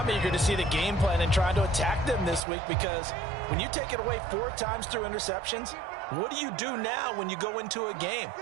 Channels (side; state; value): left; drops out; at 2.4 s